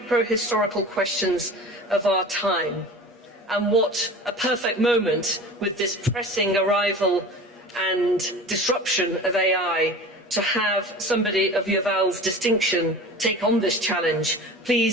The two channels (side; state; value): both; normal; correlation 0.37